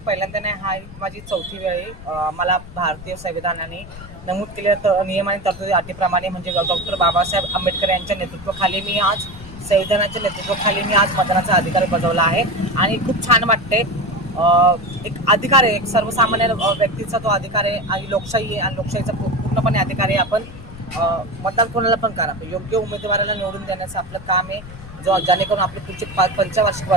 पहिल्यांदा नाही, हा माझी चौथी वेळ आहे. मला भारतीय संविधानाने नमूद केलेल्या नियम आणि तरतुदी अटीप्रमाणे म्हणजे डॉक्टर बाबासाहेब आंबेडकर यांच्या नेतृत्वाखाली मी आज संविधानाच्या नेतृत्वाखाली मी आज मतदानाचा अधिकार बजावला आहे आणि खूप छान वाटते. एक अधिकार आहे, एक सर्वसामान्य व्यक्तीचा तो अधिकार आहे आणि लोकशाही आहे आणि लोकशाहीचा पूर्णपणे अधिकार आहे. आपण मतदान कोणाला पण करा, योग्य उमेदवाराला निवडून देण्याचं आपलं काम आहे. जेणेकरून आपले पुढचे पंचवार्षिक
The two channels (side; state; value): left; noise; rumble, 16 dB below the sound